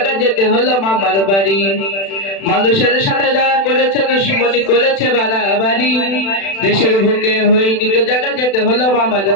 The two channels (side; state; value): right; late; 36 ms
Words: যেতে হলো মামার বাড়ি। মানুষের সাথে যারা করেছে দুশ্মনী, করেছে বাড়াবাড়ি, দেশের বুকে হয়নি তো জায়গা, যেতে হলো মামার